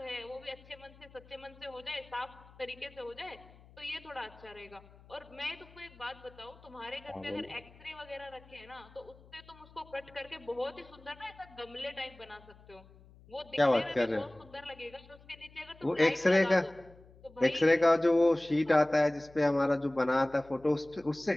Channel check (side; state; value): left; noise; hum, 24 dB below the sound